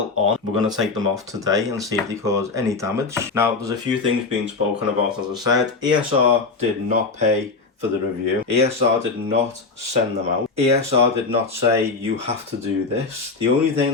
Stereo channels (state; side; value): quieter; right; 4.1 dB